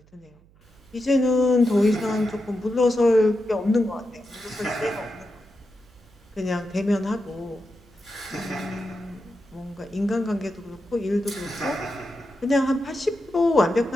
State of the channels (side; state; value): right; noise; hum, 28 dB below the sound